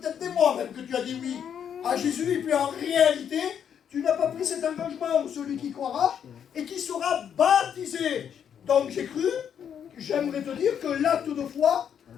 des mois même que tu as dit oui à Jésus, et puis en réalité, tu n'as pas pris cet engagement, celui qui croira, et qui sera baptisé. Donc j'ai cru, j'aimerais te dire que l'acte de foi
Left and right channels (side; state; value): right; quieter; 8.4 dB